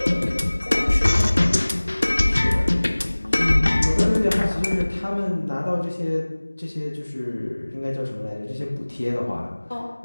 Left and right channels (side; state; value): both; inverted; correlation -1.00